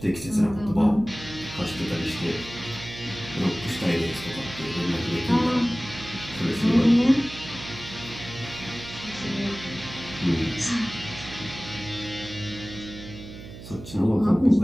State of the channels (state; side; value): noise; right; hum, 14 dB below the sound